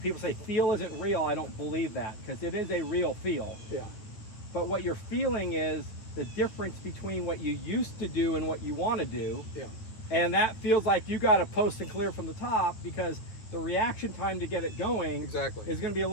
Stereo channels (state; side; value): late; right; 9.5 ms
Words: say feel isn't real. I don't believe that, because it is a real feel. Yeah. But what you're feeling is the difference between what you used to do and what you want to do. Yeah. And that feels like you got to post and clear from the top, because the reaction time to get it going is going to be a